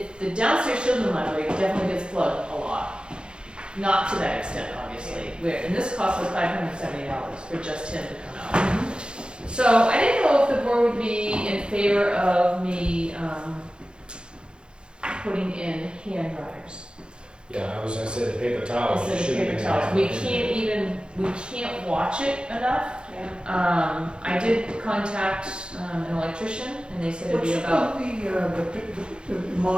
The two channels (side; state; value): left; late; 0.051 ms